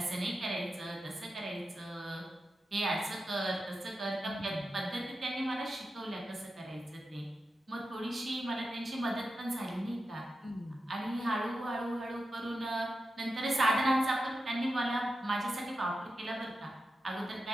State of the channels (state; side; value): normal; both; correlation 0.90